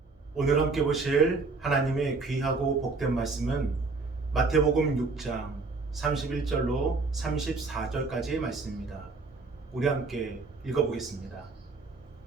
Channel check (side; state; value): left; quieter; 3.9 dB